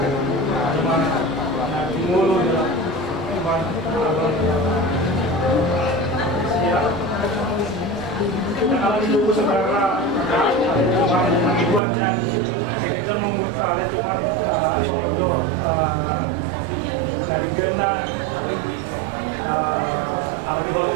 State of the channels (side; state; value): left; drops out; at 11.8 s